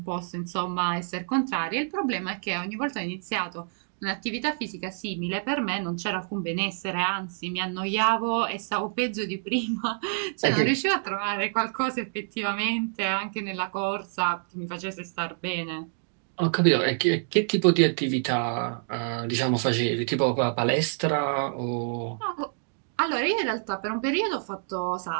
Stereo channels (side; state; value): left; silent; digital silence